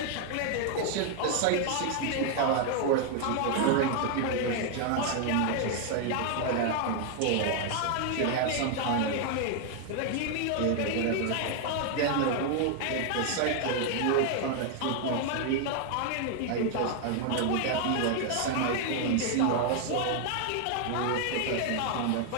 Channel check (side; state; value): both; different; correlation 0.00